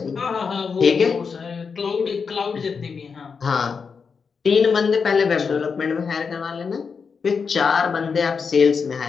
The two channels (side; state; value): right; quieter; 5.6 dB